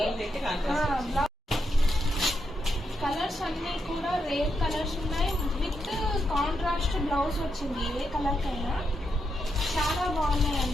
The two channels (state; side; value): normal; both; correlation 0.83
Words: కలర్స్ అన్ని కూడా రేర్ కలర్స్ ఉన్నాయి, విత్ కాంట్రాస్ట్ బ్లౌజ్ వచ్చింది ఏ కలర్ కైనా. చాలా